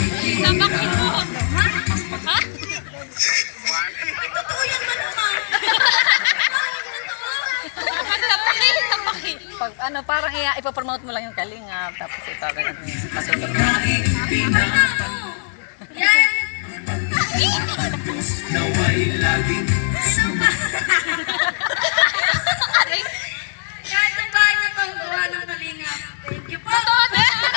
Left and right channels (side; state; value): right; silent; digital silence